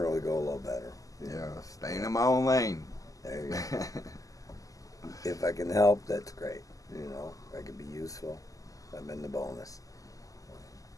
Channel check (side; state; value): right; late; 0.17 ms